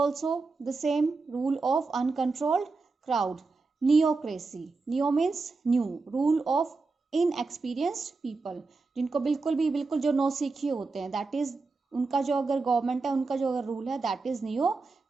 the same, rule of uncontrolled crowd. Neocracy, neo means new, rule of inexperienced people, जिनको बिल्कुल जो नौसिखिए होते हैं, that is उनका जो अगर government है, उनका जो अगर रूल है, that is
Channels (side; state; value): left; quieter; 4.0 dB